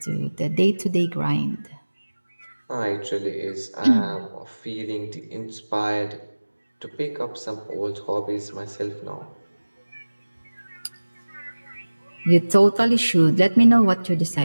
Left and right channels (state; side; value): inverted; both; correlation -1.00